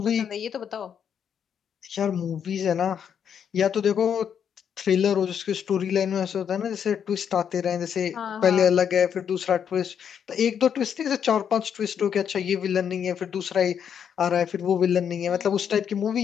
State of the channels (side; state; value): right; quieter; 8.1 dB